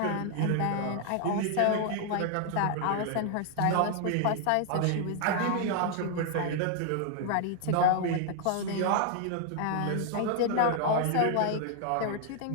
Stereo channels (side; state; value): both; different; correlation 0.00